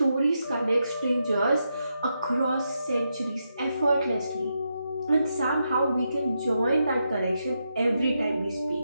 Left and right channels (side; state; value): both; inverted; correlation -0.84